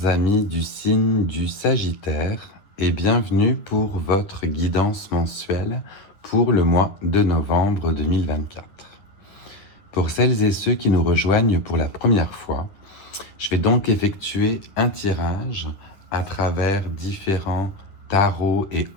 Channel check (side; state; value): right; late; 10 ms